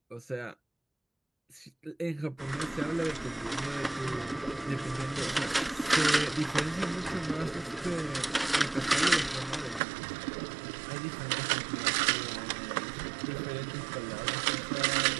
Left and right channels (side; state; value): left; drops out; at 9.8 s